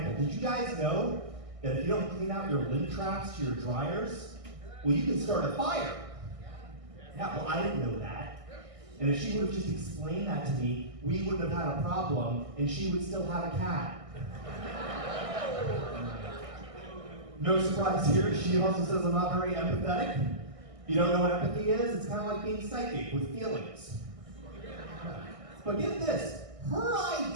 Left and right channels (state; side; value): late; left; 1.6 ms